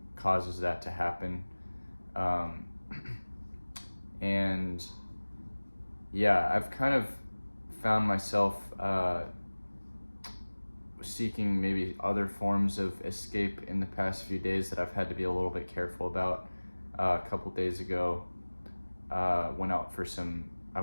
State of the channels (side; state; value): both; inverted; correlation -1.00